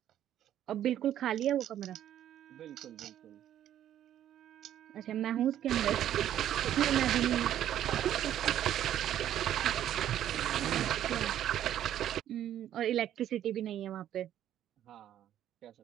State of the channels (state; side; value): quieter; left; 11.3 dB